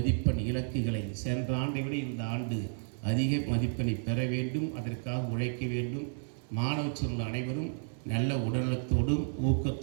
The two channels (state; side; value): silent; left; digital silence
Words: இலக்குகளை சென்ற ஆண்டை விட இந்த ஆண்டு அதிக மதிப்பெண்ணை பெற வேண்டும். அதற்காக உழைக்க வேண்டும். மாணவ செல்வங்கள் அனைவரும் நல்ல உடல்நலத்தோடும்